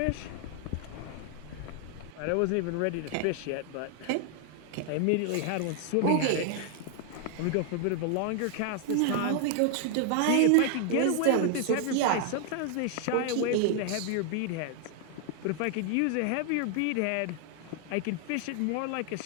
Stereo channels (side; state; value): both; different; correlation 0.00